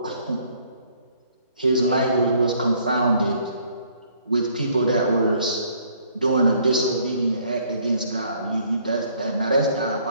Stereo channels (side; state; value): both; inverted; correlation -0.63